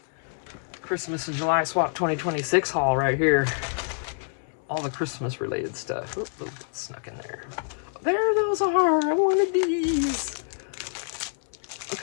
Christmas and July Swap 2026 haul right here. All the Christmas related stuff. Oop, oop, snuck in there. There those are. I wanted these.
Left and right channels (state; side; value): silent; right; digital silence